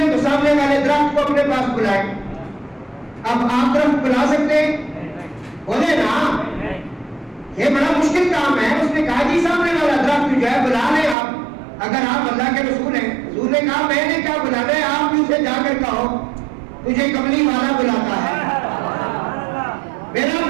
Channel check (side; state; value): left; drops out; at 11.2 s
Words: ہیں تو سامنے والے درخت کو اپنے پاس بلائیں. اب آپ درخت بلا سکتے ہیں؟ بولے نا, یہ بڑا مشکل کام ہے. اس نے کہا جی سامنے والا درخت جو ہے بلا لیں آپ, اگر آپ اللہ کے رسول ہیں. حضور نے کہا میں نے کیا بلانا ہے, آپ بھی اسے جا کر کہو تجھے کملی والا بلاتا ہے, میرا